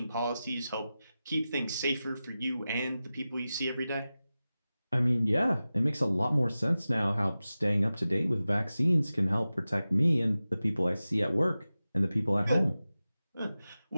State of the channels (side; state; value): both; inverted; correlation -0.95